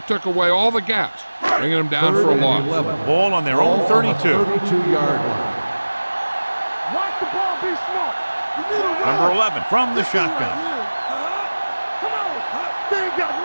away all the gaps, bringing them down for a loss. Ball on their own 32. 32-yard line. Watch the ball, be smart. You need a run. Number 11 from the shotgun. Come on. They ain't got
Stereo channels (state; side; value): inverted; both; correlation -1.00